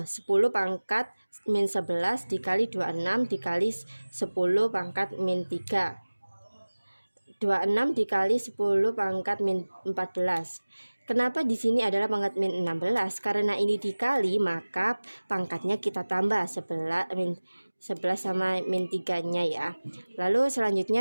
pangkat min 11 dikali 26 dikali 10 pangkat min 3. 26 dikali 10 pangkat min 14. Kenapa di sini adalah pangkat min 16? Karena ini dikali, maka pangkatnya kita tambah 11 sama min 3-nya ya. Lalu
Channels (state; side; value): inverted; both; correlation -1.00